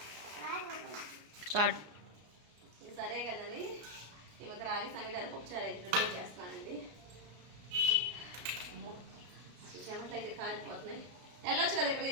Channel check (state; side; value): late; left; 33 ms